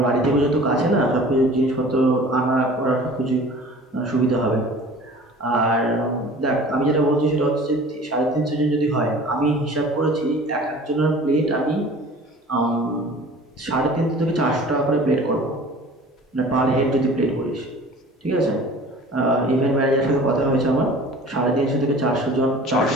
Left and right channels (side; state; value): both; normal; correlation 0.44